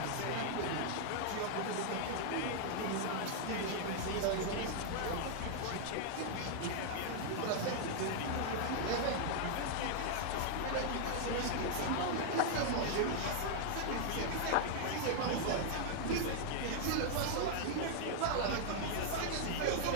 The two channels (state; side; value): different; both; correlation -0.01